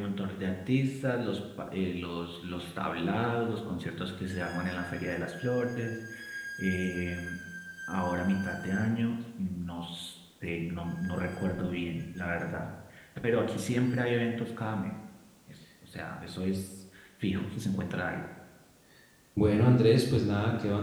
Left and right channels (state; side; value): identical; both; correlation 1.00